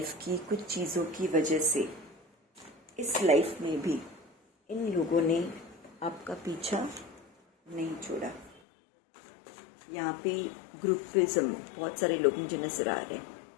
की कुछ चीज़ों की वजह से इस लाइफ में भी इन लोगों ने आपका पीछा नहीं छोड़ा। यहाँ पे ग्रुपिज्म, बहुत सारे लोग मुझे नजर आ रहे हैं।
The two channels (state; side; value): drops out; right; at 8.6 s